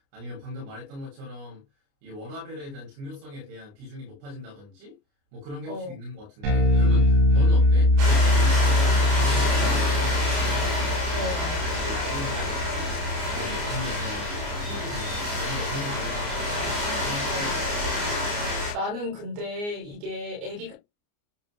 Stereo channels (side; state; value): left; late; 29 ms